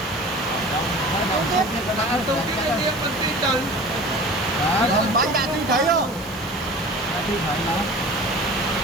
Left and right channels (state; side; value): normal; both; correlation 0.40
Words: Bạn tôi cái đương mình tin từ. Bánh đạn tin thấy không? Tin thấy nó.